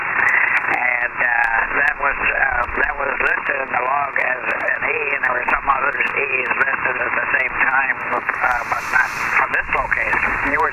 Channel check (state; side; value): identical; both; correlation 1.00